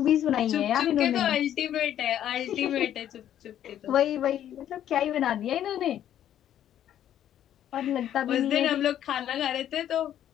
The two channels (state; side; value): quieter; right; 10.9 dB